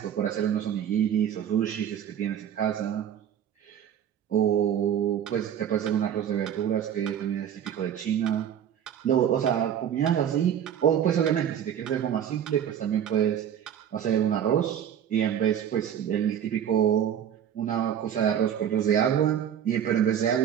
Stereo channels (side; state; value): left; quieter; 9.4 dB